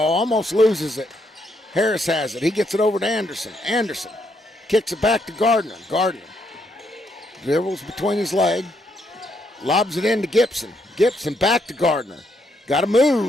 almost loses it. Harris has it. He gets it over to Anderson. Anderson kicks it back to Gardner. Gardner dribbles between his leg, lobs it into Gibson. Gibson back to Gardner. Got to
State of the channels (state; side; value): normal; both; correlation 0.75